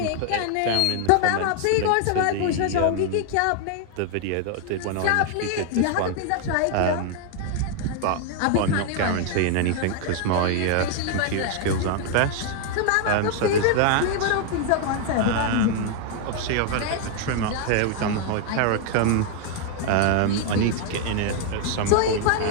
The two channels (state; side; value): different; both; correlation 0.00